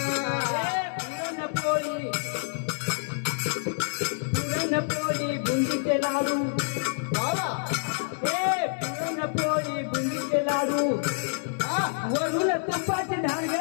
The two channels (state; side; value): silent; right; digital silence